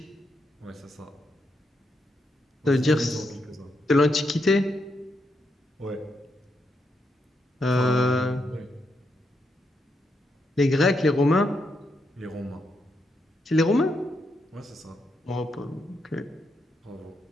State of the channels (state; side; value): normal; both; correlation 0.81